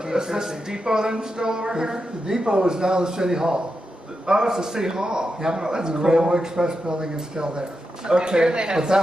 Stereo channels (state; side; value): normal; both; correlation 0.88